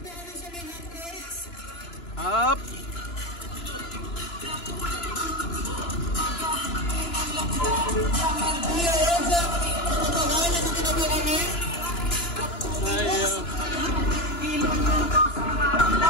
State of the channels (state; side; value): late; right; 2.9 ms